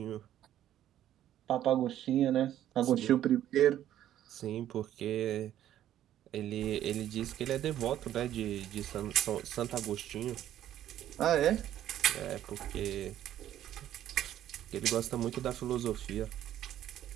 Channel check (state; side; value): quieter; left; 11.9 dB